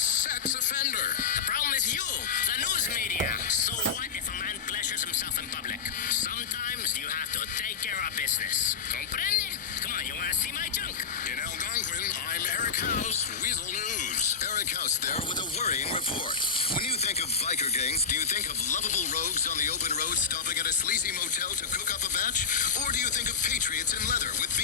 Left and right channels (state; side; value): quieter; right; 6.0 dB